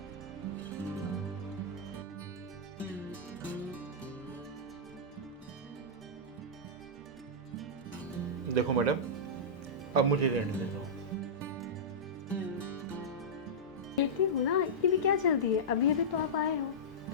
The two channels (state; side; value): normal; both; correlation -0.13